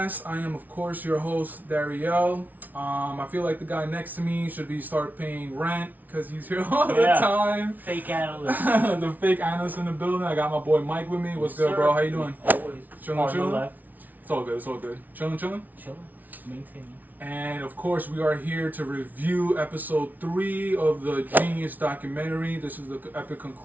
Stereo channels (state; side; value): late; left; 0.080 ms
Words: I am, of course, your host, Dariel. I feel like the guy next to me should start paying rent because he's here all the time. Fake analyst. The fake analyst in the building. I got my boy Mike with me. What's good, bro? How you doing? Always. Chilling? It's all good. It's all good. Chilling? Chilling. Maintaining. And of course, we are here to review episode 3 of the JEEN-YUHS documentary. This is the epic